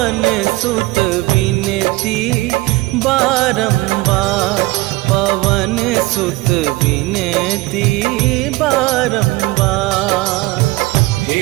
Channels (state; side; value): quieter; left; 20.7 dB